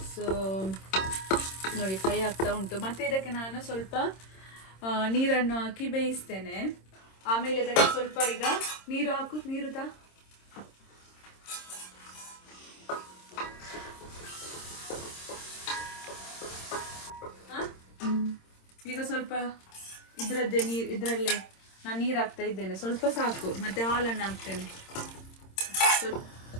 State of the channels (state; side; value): late; right; 26 ms